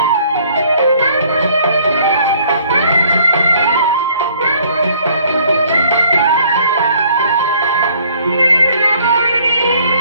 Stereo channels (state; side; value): inverted; both; correlation -0.59